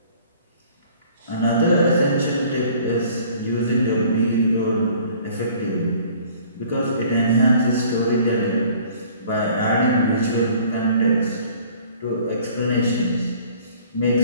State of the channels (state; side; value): inverted; both; correlation -0.53